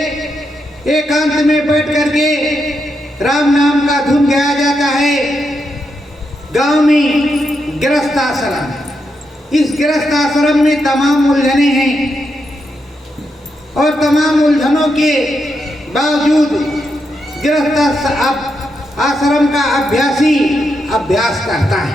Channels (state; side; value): normal; both; correlation 0.83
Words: एकांत में बैठ करके राम नाम का धुन गाया जाता है। गांव में गृहस्थ आश्रम, इस गृहस्थ आश्रम में तमाम उलझने हैं और तमाम उलझनों के बावजूद गृहस्थ आश्रम का अभ्यासी अभ्यास करता